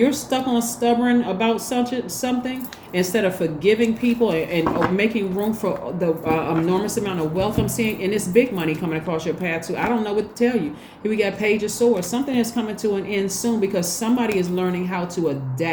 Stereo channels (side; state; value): both; identical; correlation 1.00